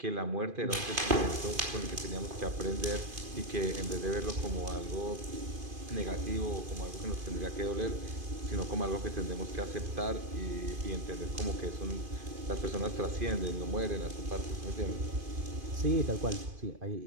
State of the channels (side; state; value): left; late; 2.5 ms